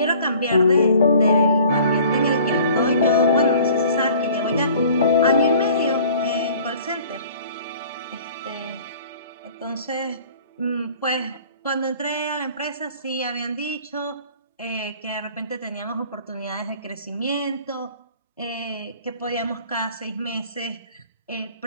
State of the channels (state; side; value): inverted; both; correlation -0.50